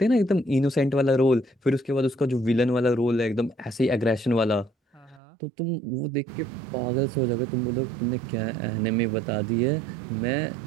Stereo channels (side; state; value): left; drops out; at 5.2 s